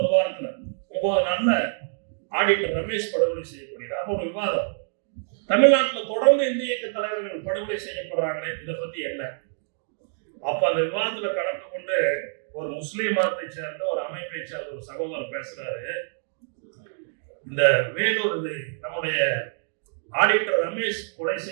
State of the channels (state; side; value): silent; left; digital silence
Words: ஒரு வாரத்துல 9 நாள்ல ஆடிட்டர் ரமேஷ் படுகொலை செய்யப்படுகிறார். அப்போ ஒரு விவாதம், தமிழ்நாட்டில் தொடர்ந்து இந்திய இயக்க தலைவர்கள் படுகொலை செய்யப்படுறாங்களே, இதை பத்தி என்ன? அப்ப அந்த விவாதத்துல கலந்து கொண்டு ஒரு முஸ்லீம் மதத்தை சேர்ந்த ஒரு அமைப்பை சேர்ந்த ஒரு சகோதரர் பேசுறாரு. இந்த வேலூர் நம்முடைய ஆடிட்டர் ரமேஷ் கொலை